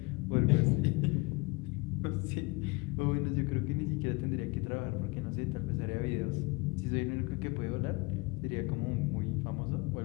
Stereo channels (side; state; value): right; quieter; 26.2 dB